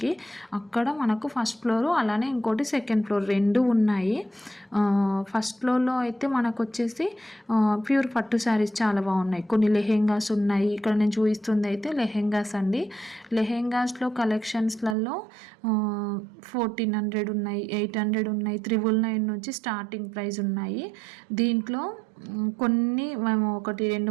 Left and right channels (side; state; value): left; drops out; at 15.0 s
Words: అక్కడ మనకు ఫస్ట్ ఫ్లోరు అలానే ఇంకోటి సెకండ్ ఫ్లోర్ 2 ఉన్నాయి. ఫస్ట్ ఫ్లోర్లో అయితే మనకు వచ్చేసి ప్యూర్ పట్టు శారీస్ చాలా బాగున్నాయి, కొన్ని లెహెంగాస్ ఉన్నాయి. ఇక్కడ నేను చూపిస్తుంది అయితే లెహెంగాస్ అండి. లెహెంగాస్లో కలెక్షన్స్లలో 1400 ఉన్నాయి, 800 ఉన్నాయి, 999 నుంచి స్టార్టింగ్ ప్రైస్ ఉన్నాయి. దీంట్లో కొన్ని మేము